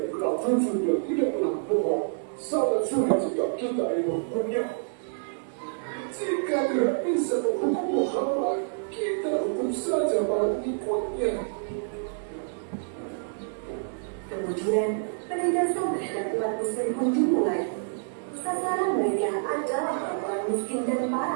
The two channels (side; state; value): left; silent; digital silence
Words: dikenal jujur dan tidak pernah bohong. Sangat sulit jika kita ingin menghukumnya. Jika tidak bisa menghukum Muhammad, kita hukum saja para pengikutnya. Kemudian, penindasan terhadap umat muslim pun dimulai. Sasaran mereka adalah orang miskin dan